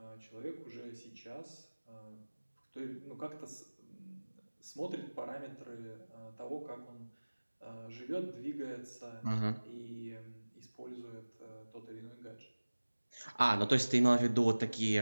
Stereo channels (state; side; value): inverted; both; correlation -1.00